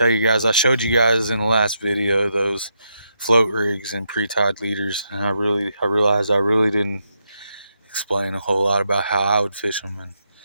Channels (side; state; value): both; inverted; correlation -0.81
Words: you guys I showed you guys in the last video those float rigs and pre-tied leaders, and I realized I really didn't explain a whole lot about how I would fish them,